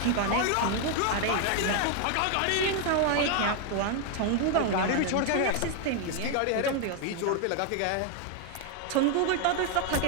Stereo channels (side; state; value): both; different; correlation 0.01